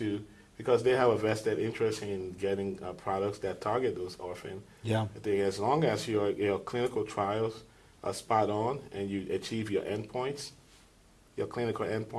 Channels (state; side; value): identical; both; correlation 1.00